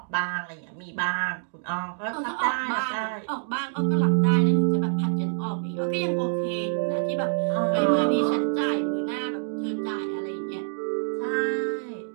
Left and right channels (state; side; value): silent; left; digital silence